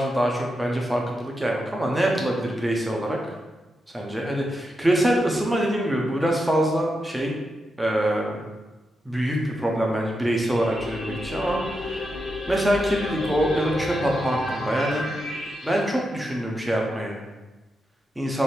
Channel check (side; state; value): both; normal; correlation 0.86